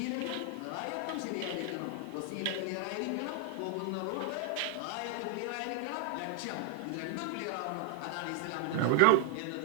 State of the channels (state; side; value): different; both; correlation 0.00